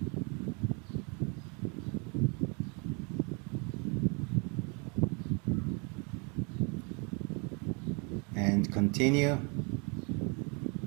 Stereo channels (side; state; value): left; quieter; 33.6 dB